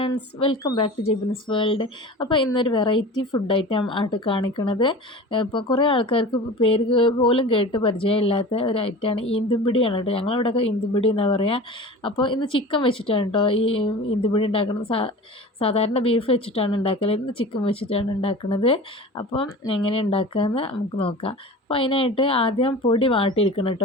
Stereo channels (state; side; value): normal; both; correlation 0.36